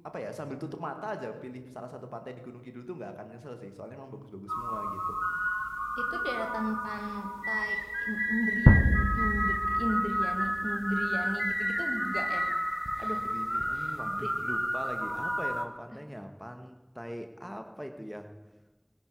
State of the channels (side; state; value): both; identical; correlation 1.00